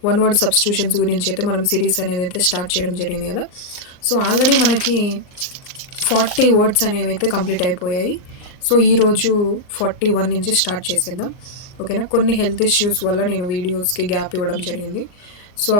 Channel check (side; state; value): right; late; 39 ms